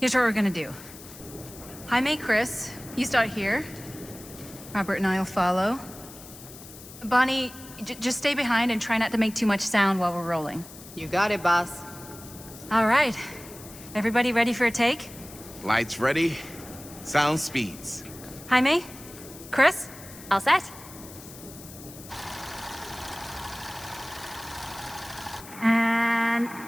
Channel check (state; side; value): noise; left; hiss, 17 dB below the sound